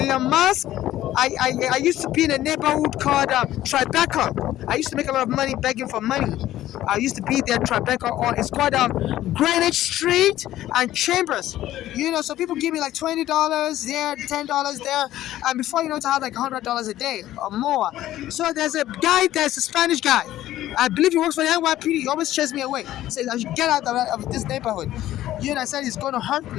Musk. I used to be in a neighborhood called Tribeca. I used to make a lot of money begging for money. I used to be there, Tribeca, or it's called Greenwich Street and Chambers. So people give me like $20 there, $10 there, and before you know it, I have like $100 a day or more. So there's a Spanish guy. I believe he works for the NYPD. He always chases me away. He says I should get out of this neighborhood. I said he's going to hurt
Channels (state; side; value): quieter; right; 13.9 dB